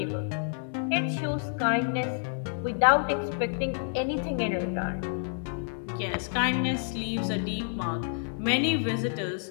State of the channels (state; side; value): silent; right; 59 dB below the other